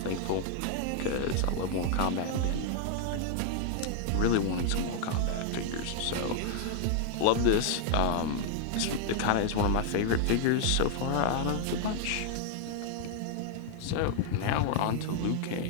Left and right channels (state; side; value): different; both; correlation 0.00